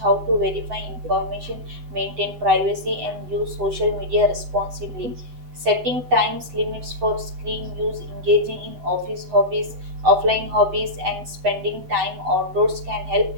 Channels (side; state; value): left; late; 7.9 ms